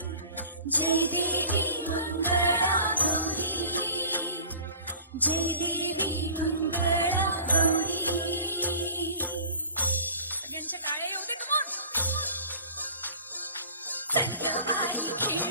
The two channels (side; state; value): both; inverted; correlation -0.45